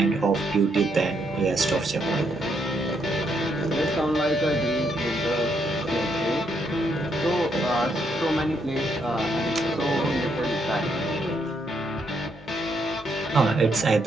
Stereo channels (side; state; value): left; noise; hum, 23 dB below the sound